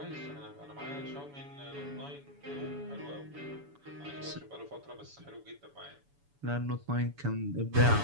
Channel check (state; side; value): late; left; 7.0 ms